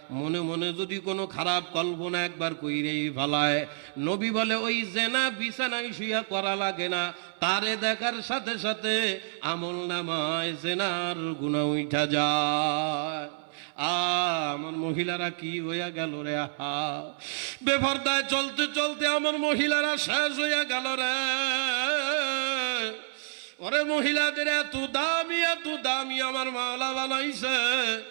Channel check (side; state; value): left; silent; 59 dB below the other